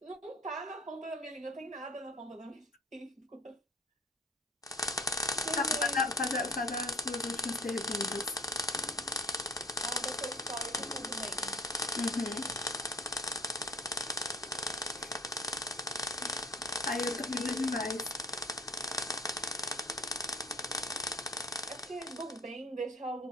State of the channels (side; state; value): both; normal; correlation 0.45